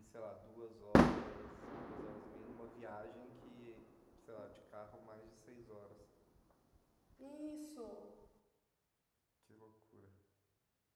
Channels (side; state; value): both; identical; correlation 1.00